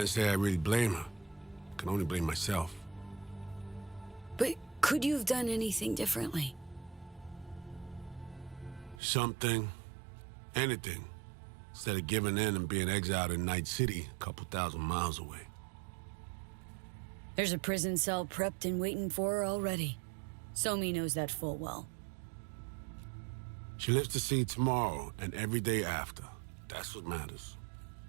say I really blame her. I can only blame myself. But could you have done anything differently? Something. Anything. Instead of giving in and being exiled in Night City, a couple thousand miles away. There's a prison cell prepped and waiting for her already. Somi knows that full well. She lives to see tomorrow and every day after. That's what matters.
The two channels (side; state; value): left; drops out; at 9.0 s